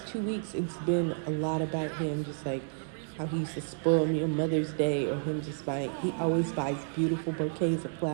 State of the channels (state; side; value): silent; left; digital silence